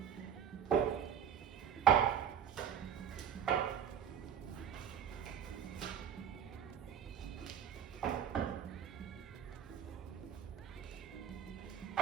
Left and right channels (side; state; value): left; quieter; 8.6 dB